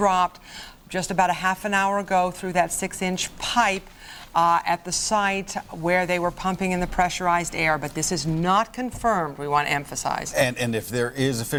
just about a half an hour ago through that 6-inch pipe at the site where they were pumping in the pressurized air, but this is not confirmed, we want to emphasize. And if there is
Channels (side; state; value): both; identical; correlation 1.00